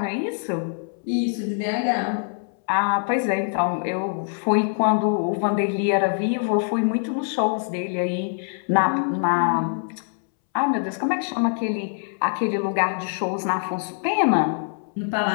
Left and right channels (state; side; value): silent; right; 63 dB below the other